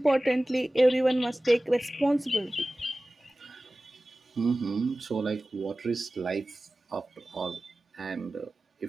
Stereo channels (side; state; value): both; normal; correlation 0.97